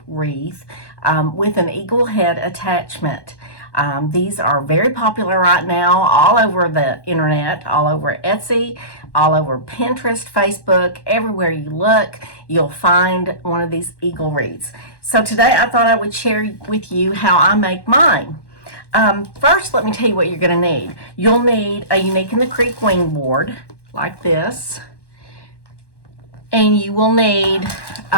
wreath with an eagle head attachment. These are very popular right now all over the internet, all over Etsy, all over Pinterest, Facebook. Everywhere you look, you'll find one of these eagle wreaths. So today I thought I would share with you how I make mine. First, let me tell you what you're going to need. You'll need a Unique in the Creek wing board like this. And you will need,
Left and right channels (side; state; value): right; late; 1.1 ms